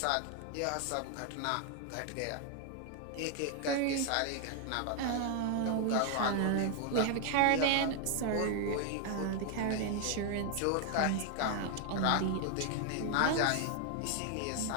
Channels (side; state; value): both; different; correlation 0.00